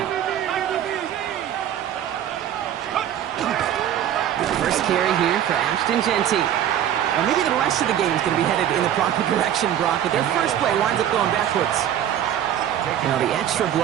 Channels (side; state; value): left; quieter; 10.6 dB